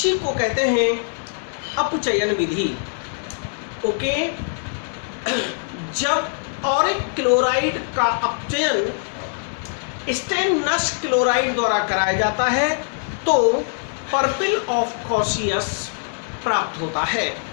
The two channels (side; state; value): right; silent; digital silence